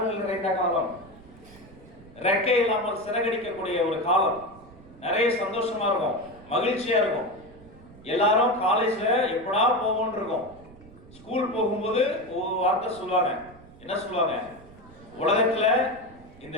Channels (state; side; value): noise; right; rumble, 22 dB below the sound